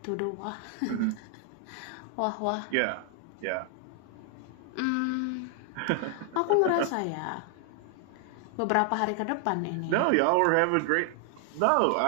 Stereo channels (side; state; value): both; different; correlation 0.00